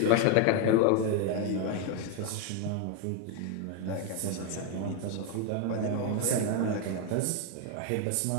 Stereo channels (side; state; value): both; different; correlation 0.01